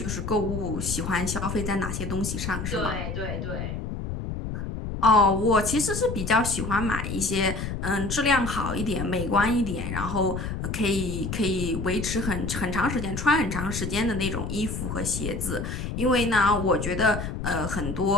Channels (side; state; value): left; noise; rumble, 5 dB below the sound